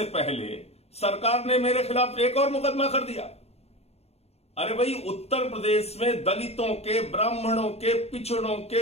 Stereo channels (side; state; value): right; late; 0.30 ms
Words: पहले सरकार ने मेरे खिलाफ एक और मुकदमा कर दिया। अरे भाई, उत्तर प्रदेश में दलितों के, ब्राह्मणों के, पिछड़ों